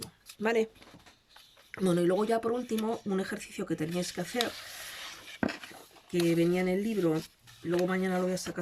¿vale? Bueno, y luego ya por último, un ejercicio que teníais que hacer, que venía en el libro, luego mañana lo voy a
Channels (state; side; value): identical; both; correlation 1.00